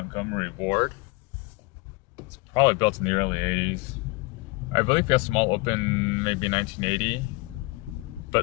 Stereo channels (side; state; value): right; quieter; 24.5 dB